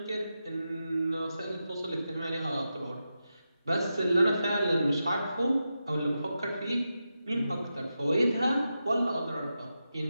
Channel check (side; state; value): both; inverted; correlation -0.89